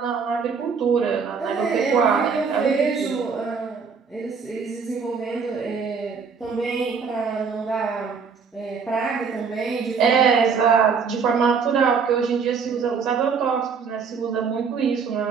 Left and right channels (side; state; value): left; quieter; 5.7 dB